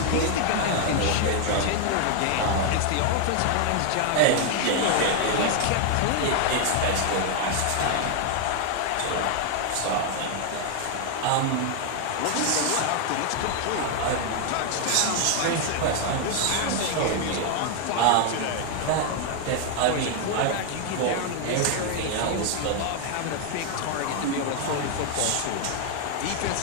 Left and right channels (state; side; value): different; both; correlation 0.01